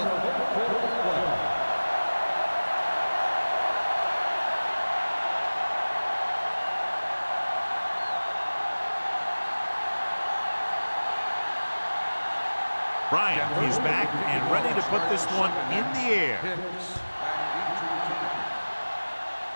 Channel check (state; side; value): inverted; both; correlation -1.00